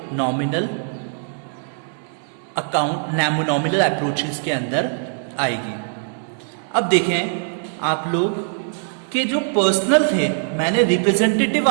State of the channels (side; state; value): left; silent; digital silence